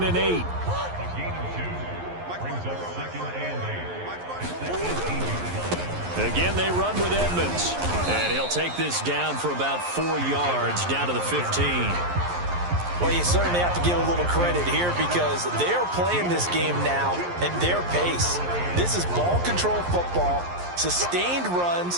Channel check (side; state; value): left; late; 11 ms